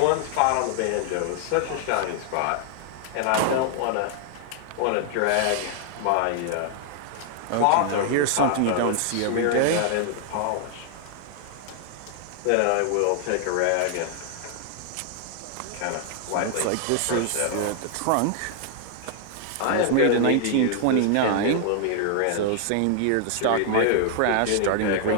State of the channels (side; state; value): both; different; correlation 0.00